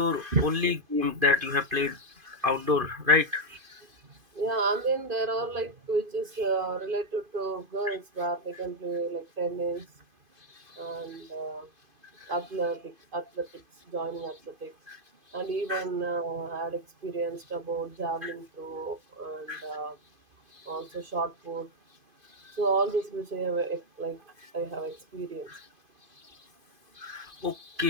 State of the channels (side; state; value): left; late; 2.5 ms